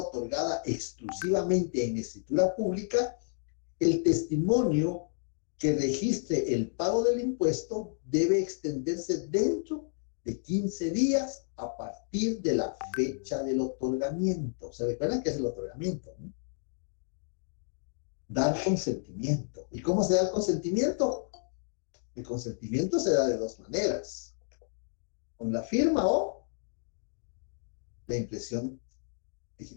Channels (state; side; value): silent; right; digital silence